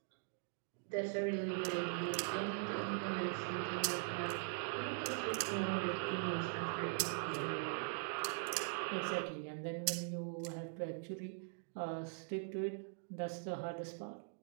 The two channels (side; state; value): left; silent; digital silence